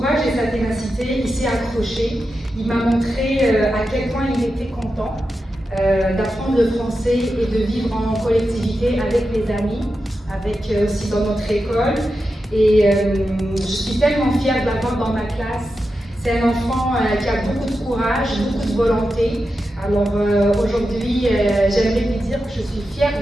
et sa ténacité, il s'est accroché. Il m'a montré à quel point il était content d'apprendre le français et de vivre en collectivité avec les amis, avec aussi dans notre école. Et je suis tellement fière de l'avoir dans ma classe. C'est un enfant qui a beaucoup de courage, beaucoup de volonté. Alors aujourd'hui, j'aimerais lui dire que je suis fière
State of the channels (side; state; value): both; normal; correlation 0.90